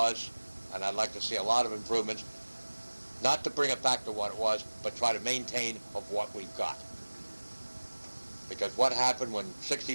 and I'd like to see a lot of improvements, not to bring it back to what it was, but try to maintain of what we've got. Because what happened when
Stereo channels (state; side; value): inverted; both; correlation -1.00